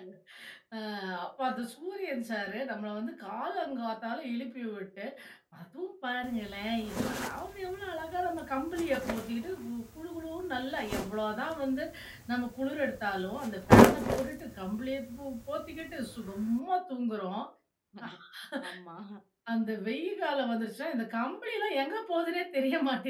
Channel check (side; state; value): both; identical; correlation 1.00